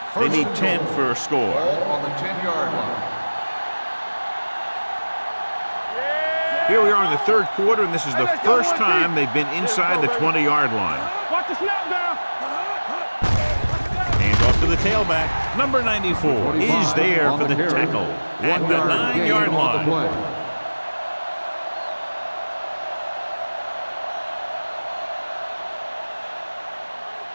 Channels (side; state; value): both; inverted; correlation -1.00